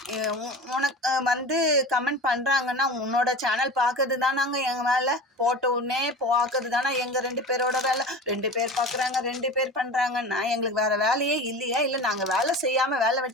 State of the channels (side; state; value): both; normal; correlation 0.33